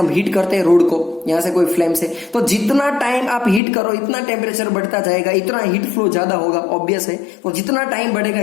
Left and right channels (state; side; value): drops out; right; at 3.6 s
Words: हीट करते हैं रोड को, यहाँ से कोई फ्लेम से, तो जितना टाइम आप हीट करो इतना टेम्परेचर बढ़ता जाएगा, इतना हीट फ्लो ज्यादा होगा। ऑब्वियस है, तो जितना टाइम बढ़ेगा